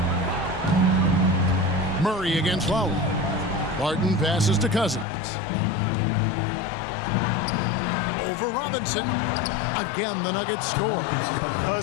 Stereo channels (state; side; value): drops out; right; at 5.1 s